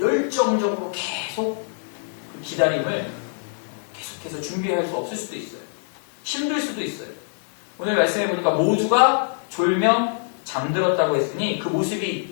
계속 그 기다림을 계속해서 준비할 수 없을 수도 있어요. 힘들 수도 있어요. 오늘 말씀해 보니까 모두가 졸며 잠들었다고 했으니 그 모습이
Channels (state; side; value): silent; right; digital silence